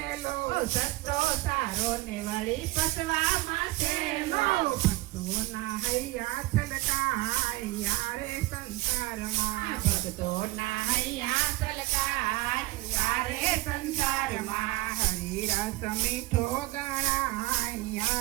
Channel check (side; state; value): left; quieter; 19.7 dB